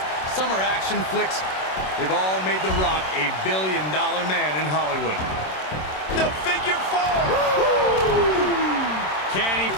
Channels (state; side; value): late; right; 27 ms